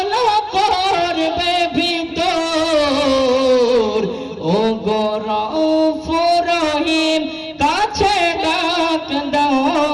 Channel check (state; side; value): identical; both; correlation 1.00